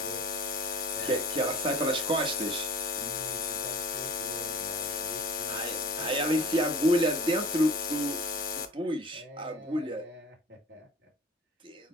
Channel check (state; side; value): normal; both; correlation 0.42